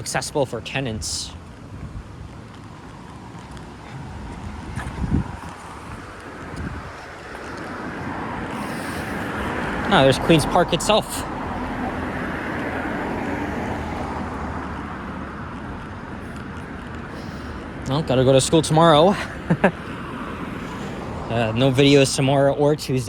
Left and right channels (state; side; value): identical; both; correlation 1.00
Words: for tenants. Oh, there's Queen's Park itself. Well, gotta go to school tomorrow. No videos tomorrow or